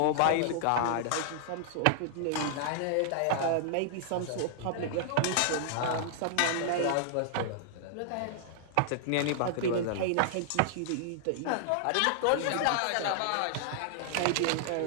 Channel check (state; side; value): different; both; correlation -0.01